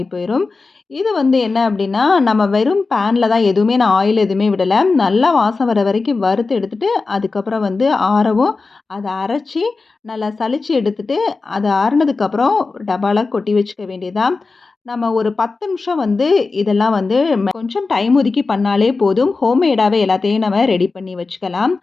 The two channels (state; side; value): quieter; right; 4.0 dB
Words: போயிடும். இது வந்து என்ன அப்படின்னா நம்ம வெறும் பேனில் தான் எதுவுமே நான் ஆயில் எதுவுமே விடலை. நல்லா வாசம் வர வரைக்கும் வறுத்து எடுத்துகிட்டு அதுக்கப்புறம் வந்து ஆறவும் அதை அரைச்சி நல்லா சலிச்சு எடுத்துகிட்டு அது ஆறுனதுக்கப்புறம் டப்பாவில் கொட்டி வச்சுக்க வேண்டியதான். நம்ம ஒரு 10 நிமிஷம் வந்து இதெல்லாம் வந்து கொஞ்சம் டைம் ஒதுக்கி பண்ணாலே போதும். ஹோம்மேடாகவே எல்லாத்தையும் நம்ம ரெடி பண்ணி வச்சுக்கலாம்.